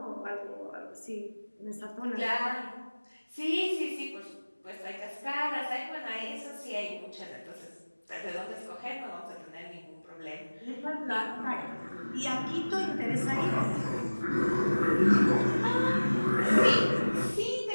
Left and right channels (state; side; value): inverted; both; correlation -1.00